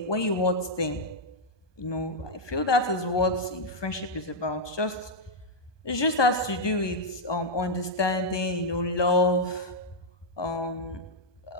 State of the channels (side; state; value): right; late; 1.2 ms